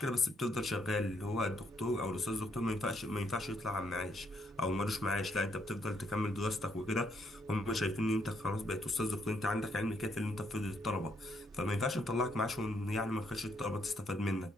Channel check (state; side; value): normal; both; correlation 0.73